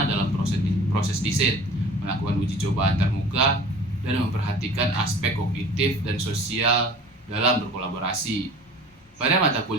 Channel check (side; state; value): both; normal; correlation 0.43